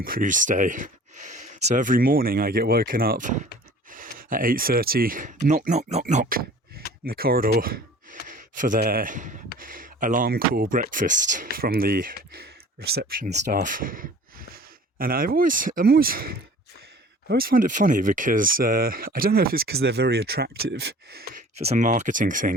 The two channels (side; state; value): both; normal; correlation 0.47